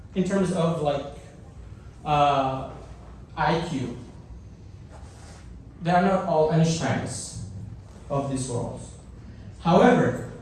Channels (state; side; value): identical; both; correlation 1.00